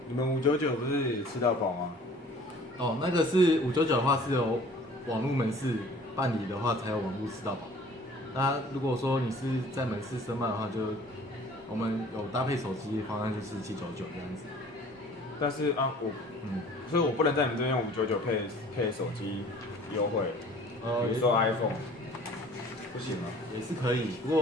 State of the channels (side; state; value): both; normal; correlation 0.50